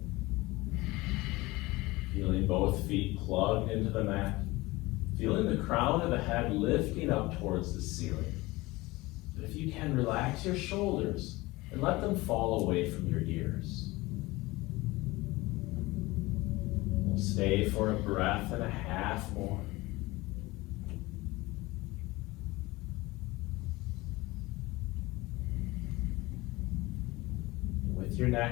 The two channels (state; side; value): quieter; right; 20.9 dB